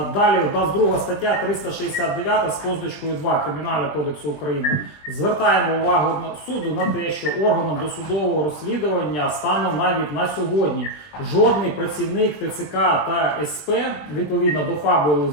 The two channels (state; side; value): late; right; 20 ms